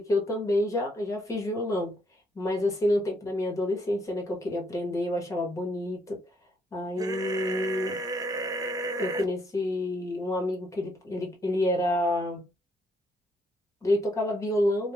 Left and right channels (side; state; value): both; normal; correlation 0.72